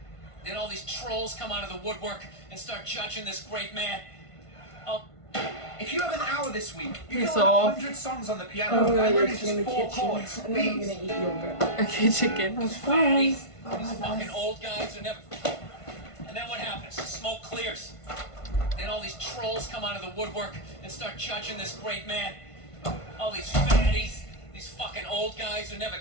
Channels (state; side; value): late; right; 1.5 ms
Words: Then all these trolls come out of the woodwork and start judging this great man. Oh. If you have an hour this week, you Piss can learn off. 100 songs on the piano. Oh, I yeah, learned in just the 4 kitchen. chords. And then I'm Please. gonna eat yogurt. Okay, chicken. That's fine. These fucking old guys who never... And then what happens? The smoke clears. Then all these trolls come out of the woodwork and start judging this great man. All these fatties, these fucking old guys who never